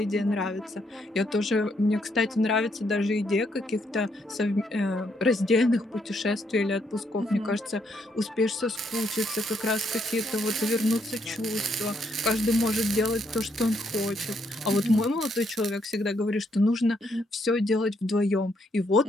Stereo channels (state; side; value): normal; both; correlation 0.74